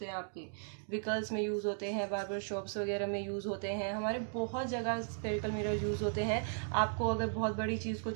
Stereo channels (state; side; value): silent; left; digital silence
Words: हैं, आपके व्हीकल्स में यूज़ होते हैं, बार्बर शॉप्स वगैरह में यूज़ होते हैं, हमारे बहुत जगह सफेरिकल मिरर यूज़ होते हैं। आपको अगर बहुत बड़ी चीज़ को